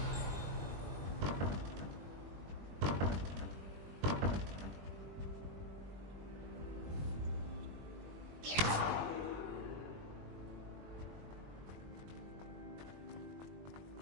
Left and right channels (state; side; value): late; left; 21 ms